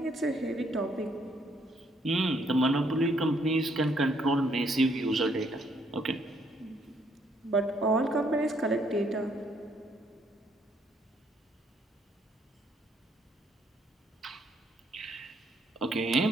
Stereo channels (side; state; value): both; normal; correlation 0.70